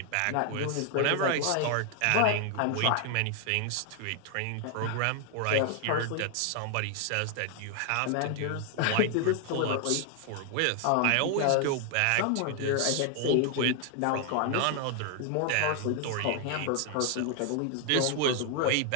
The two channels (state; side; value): different; both; correlation 0.00